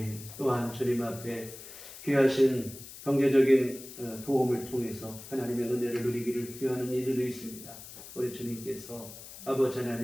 또한 주님 앞에 귀하신 경제적인 도움을 통해서 하나님의 은혜를 누리기를 귀하는 이들도 있습니다. 우리 주님께서 아버지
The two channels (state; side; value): noise; left; hiss, 15 dB below the sound